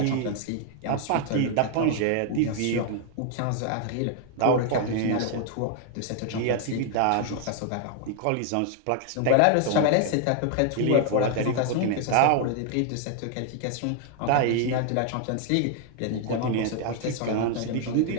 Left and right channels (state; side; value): different; both; correlation 0.00